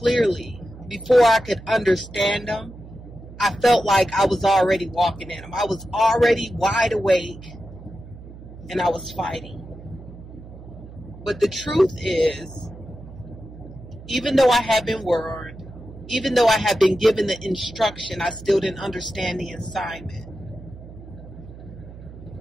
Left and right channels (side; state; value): right; noise; hum, 16 dB below the sound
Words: before I could understand them, I felt like I was already walking in them. I was already wide awake and I was fighting. But the truth is, even though I have been warned, even though I have been given the instruction, I still didn't understand the assignment.